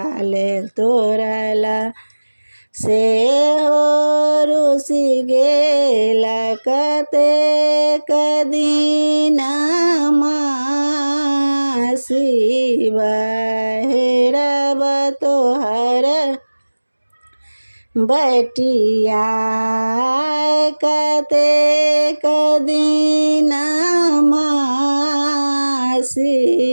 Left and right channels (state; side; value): inverted; both; correlation -1.00